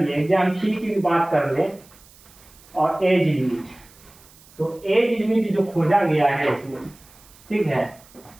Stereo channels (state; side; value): noise; right; hiss, 25 dB below the sound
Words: एग्जाम फी की भी बात कर ले, और एज लिमिट। तो एज लिमिट जो खोजा गया है इसमें, ठीक है,